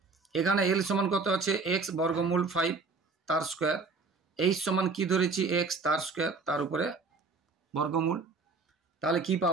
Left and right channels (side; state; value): left; quieter; 4.2 dB